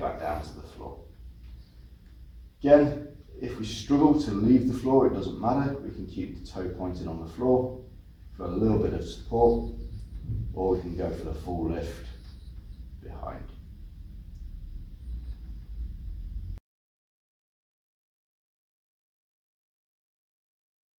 down to the floor. Again, if we struggle to leave the floor, it doesn't matter. We can keep the toe pointed on the floor for a little bit of support, or we can go for the full lift behind.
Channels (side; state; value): both; identical; correlation 1.00